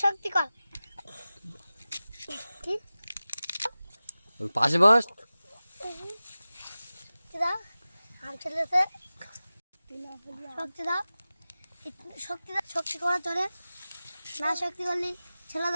শক্তি কর। পাশে বস। দাও আম ছেলেছে, শক্তি দাও, শক্তি দাও। শক্তি করার জন্য না, শক্তি করলে ছেলে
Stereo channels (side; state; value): both; inverted; correlation -0.96